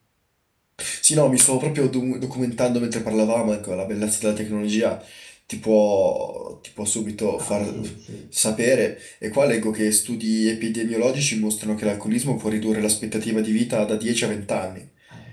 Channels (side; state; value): both; identical; correlation 1.00